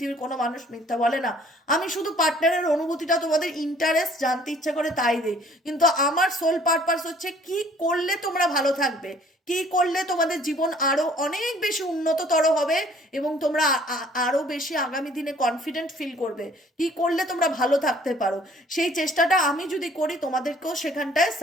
কোনো মানুষ মিথ্যা বলে না। আমি শুধু পার্টনারের অনুভূতিটা, তোমাদের ইন্টারেস্ট জানতে ইচ্ছা করে তাই দিই, কিন্তু আমার সোল পারপাস হচ্ছে কি করলে তোমরা ভালো থাকবে, কি করলে তোমাদের জীবন আরো অনেক বেশি উন্নততর হবে এবং তোমরা আরো বেশি আগামী দিনে কনফিডেন্ট ফিল করবে, কি করলে তোমরা ভালো থাকতে পারো। সেই চেষ্টাটা আমি যদি করি, তোমাদেরকেও সেখানটায়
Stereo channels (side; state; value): both; normal; correlation 0.56